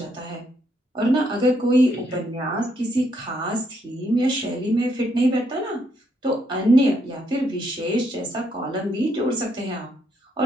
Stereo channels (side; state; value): both; normal; correlation 0.74